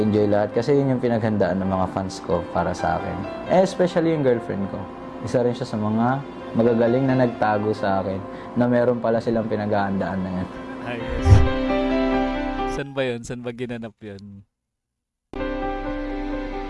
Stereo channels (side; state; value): both; identical; correlation 1.00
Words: lahat kasi yun yung pinaghandaan ng mga fans ko para sa akin. Especially yung girlfriend ko. Isa rin siya sa mga magagaling na nagtago sa akin na meron pala silang pinaghahandaan na yan. Ayos. Saan ba yun? Saan ba ginanap yun?